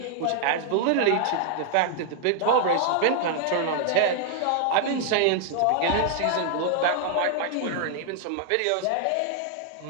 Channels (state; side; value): different; both; correlation 0.00